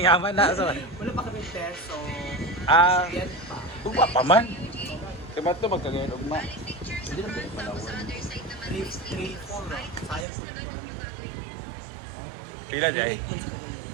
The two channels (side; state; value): left; drops out; at 10.2 s